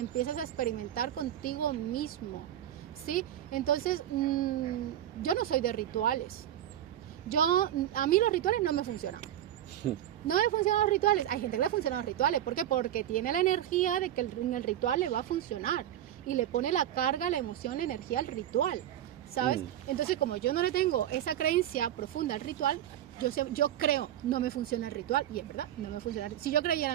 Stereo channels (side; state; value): left; quieter; 11.6 dB